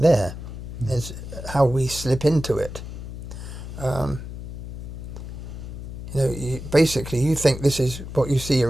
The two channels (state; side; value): noise; left; hum, 9 dB below the sound